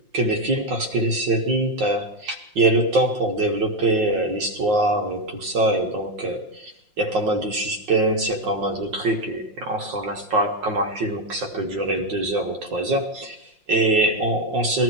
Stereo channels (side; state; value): left; late; 5.6 ms